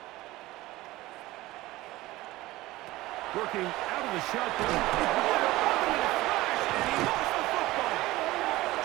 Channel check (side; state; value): left; quieter; 18.2 dB